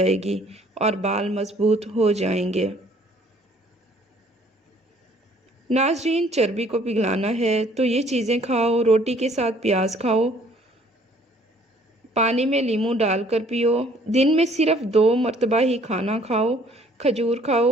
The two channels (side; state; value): both; normal; correlation 0.59